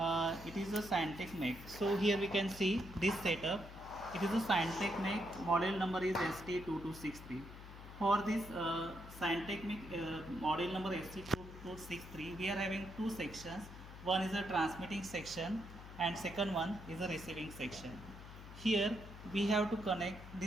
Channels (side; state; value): left; noise; hum, 14 dB below the sound